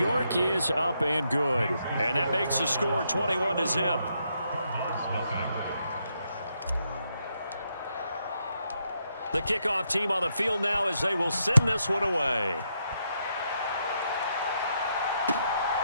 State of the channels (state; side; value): inverted; both; correlation -0.79